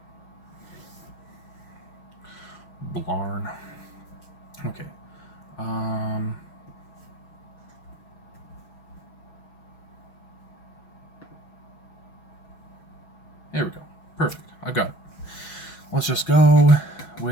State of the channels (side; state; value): right; late; 6.1 ms